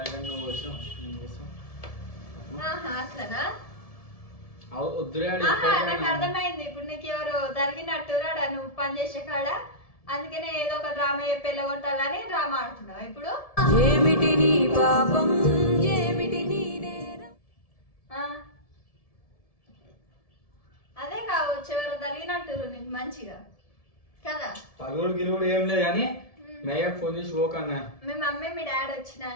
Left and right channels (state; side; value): late; right; 1.7 ms